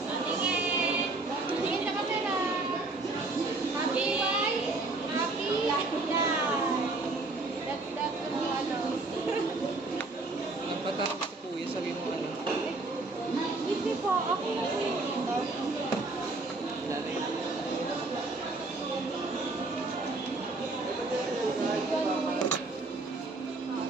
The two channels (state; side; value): quieter; left; 3.3 dB